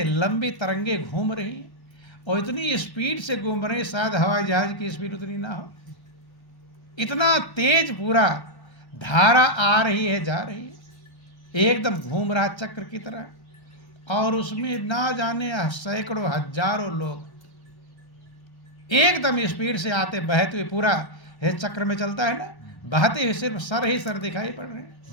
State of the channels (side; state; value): right; late; 1.3 ms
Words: लंबी तरंगे घूम रही हैं और इतनी स्पीड से घूम रही, शायद हवाई जहाज की स्पीड उतनी ना हो, इतना तेज पूरा धारा आ रही है जा रही है, एकदम घूम रहा चक्र की तरह, और उसमें ना जाने सैकड़ों हजारों लोग एकदम स्पीड से आते बहते हुए, पूरा है चक्र में चलता है ना, बहते हुए सिर्फ सर ही सर दिखाई पड़ रहे हैं।